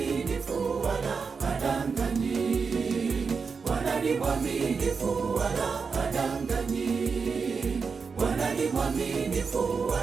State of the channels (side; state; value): left; quieter; 5.3 dB